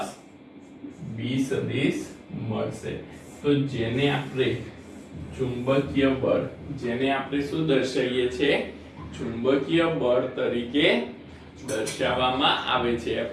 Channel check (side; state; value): both; identical; correlation 1.00